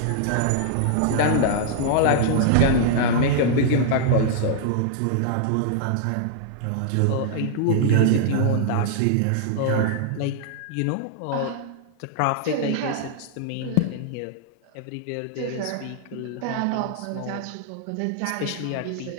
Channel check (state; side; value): different; both; correlation -0.01